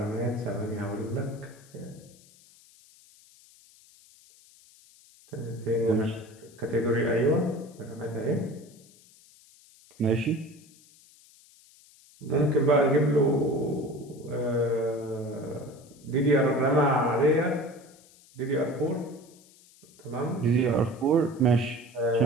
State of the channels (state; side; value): noise; left; hiss, 26 dB below the sound